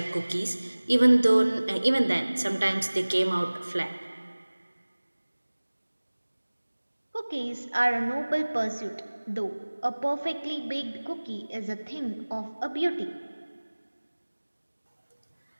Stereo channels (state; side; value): inverted; both; correlation -1.00